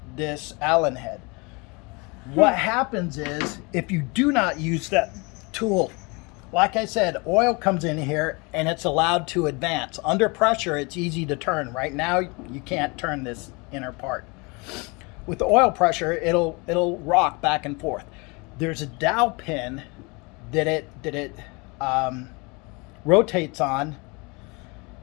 this Allen head. What happens is if you do not use that tool, like I said, oil comes in here and it's allowed to advance. Under pressure, it's easy to turn. Right now, you can't turn this inner part. With the oil pressure, it'll rock back and forth. There's a dowel pin that it rotates on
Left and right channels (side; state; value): right; quieter; 28.5 dB